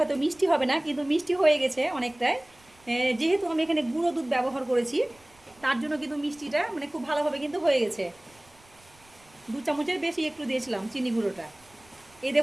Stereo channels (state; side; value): noise; right; rumble, 29 dB below the sound